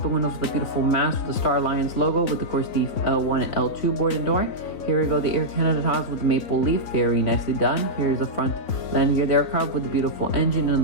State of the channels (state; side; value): late; right; 3.9 ms